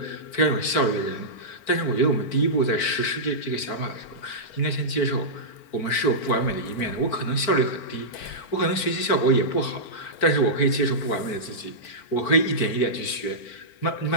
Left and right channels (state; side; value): late; right; 4.4 ms